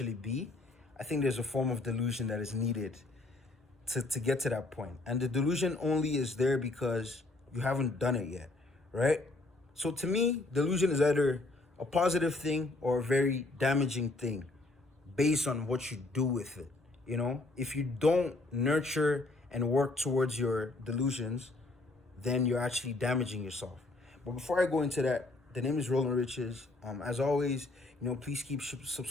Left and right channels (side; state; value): right; quieter; 3.0 dB